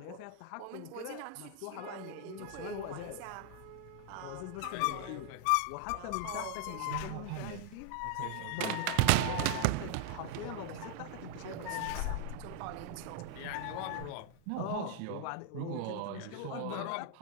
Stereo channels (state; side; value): different; both; correlation 0.00